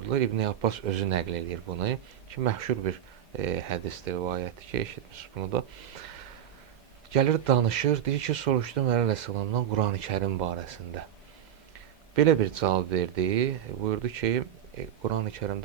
İbn Abbas özü nəql edir bunu ki, məşhur bir hədisdir, rivayətdir ki, eşitmişsiniz bunu da. Gəlir danışır, deyir ki, soruşdum Əleyhisselamdan Qurani Kərim barəsində. Belə bir cavab verdi, buyurdu ki, Qurani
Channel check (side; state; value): left; quieter; 10.1 dB